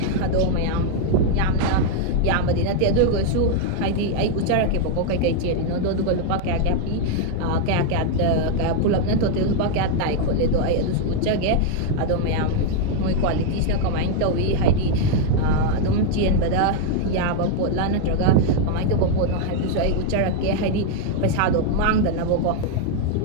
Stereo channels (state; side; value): different; both; correlation 0.00